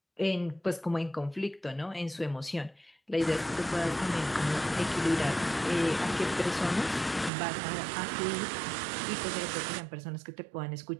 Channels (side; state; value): left; drops out; at 7.3 s